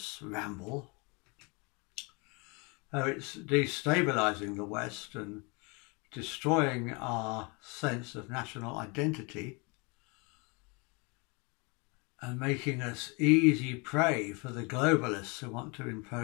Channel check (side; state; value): right; quieter; 30.3 dB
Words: ramble, how it's destabilising the West and destroying our sense of national identity and making us easy prey for the globalists who want to